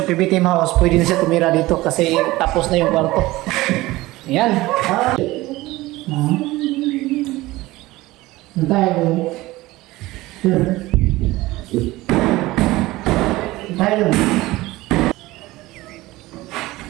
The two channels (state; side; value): quieter; left; 18.9 dB